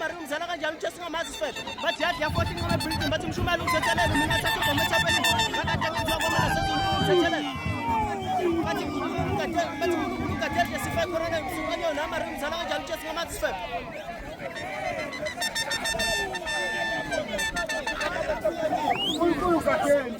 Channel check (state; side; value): identical; both; correlation 1.00